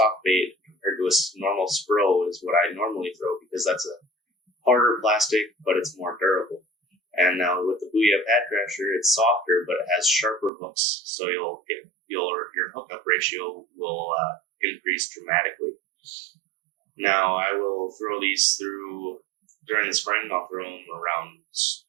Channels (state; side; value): drops out; left; at 10.5 s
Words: bait compared to a normal Spro is what I normally throw, because that's a harder plastic, but it's more durable. And now with the Booyah Pad Crasher, it's softer, but it has sharper hooks, so your hookup ratio will increase dramatically. Now I will throw these through during the spring. I'll throw them around